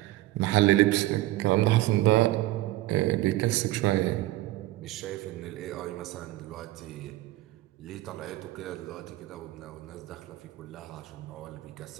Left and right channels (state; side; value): quieter; left; 16.9 dB